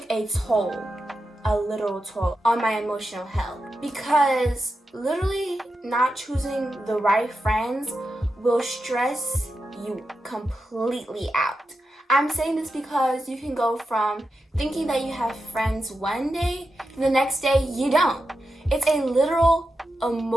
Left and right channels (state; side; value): normal; both; correlation 0.88